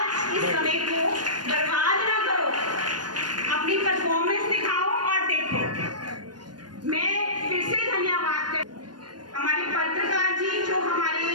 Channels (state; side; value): late; left; 0.70 ms